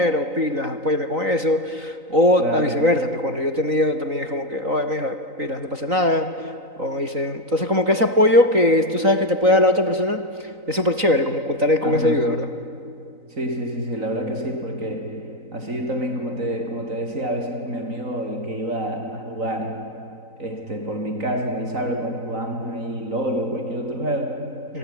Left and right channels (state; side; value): late; left; 3.9 ms